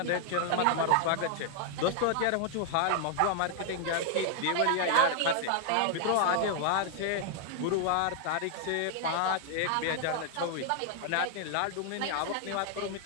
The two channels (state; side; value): different; both; correlation 0.00